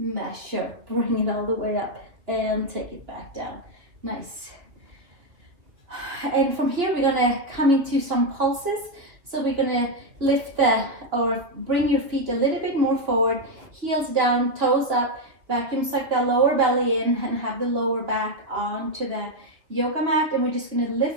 Bring it all the way up and take it back down. Nice. And from here we're gonna come into some pulses. So we're gonna lift or bring your feet a little bit more forward, heels down, toes up, vacuum suck that lower belly in and have the lower back onto the yoga mat, and we're just gonna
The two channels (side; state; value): left; late; 2.7 ms